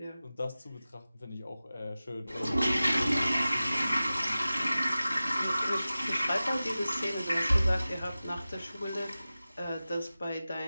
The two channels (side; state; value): both; inverted; correlation -0.96